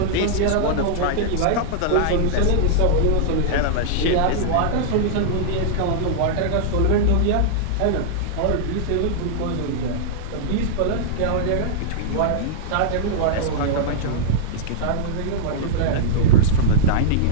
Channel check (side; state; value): both; different; correlation -0.02